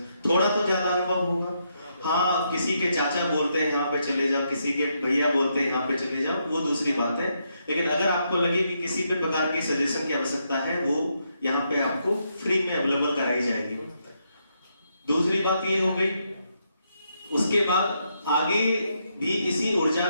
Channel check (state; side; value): inverted; both; correlation -0.79